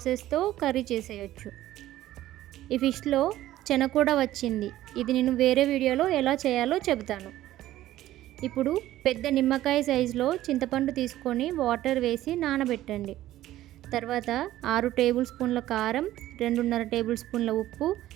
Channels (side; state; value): left; quieter; 14.4 dB